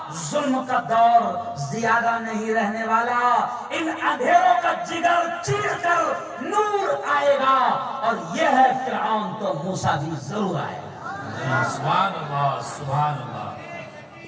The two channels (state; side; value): identical; both; correlation 1.00